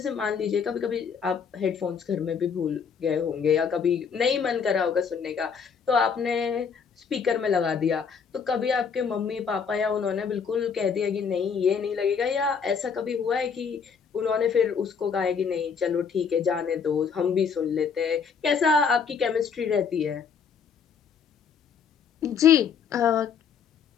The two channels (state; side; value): quieter; right; 6.3 dB